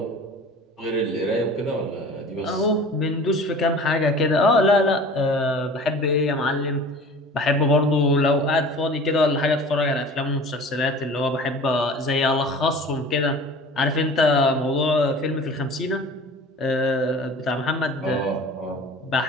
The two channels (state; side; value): normal; both; correlation 0.41